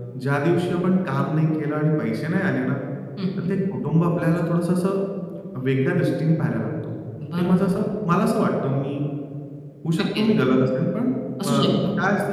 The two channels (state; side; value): identical; both; correlation 1.00